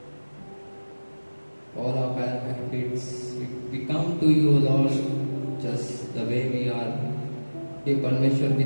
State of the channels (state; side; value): inverted; both; correlation -1.00